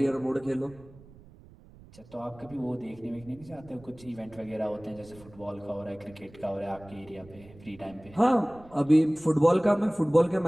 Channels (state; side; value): noise; right; rumble, 22 dB below the sound